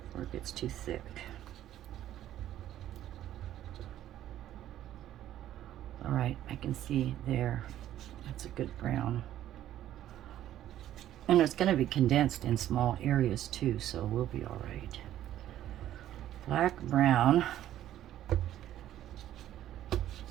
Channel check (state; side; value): quieter; left; 12.3 dB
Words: before it gets too thick. All right, I can see there. That's a good brown. And it's going to be condensed in small areas too, so we'll be all right. Black, brown.